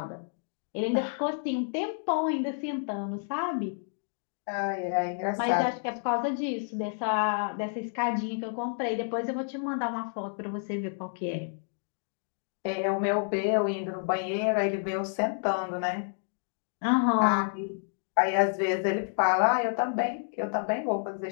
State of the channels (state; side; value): silent; right; digital silence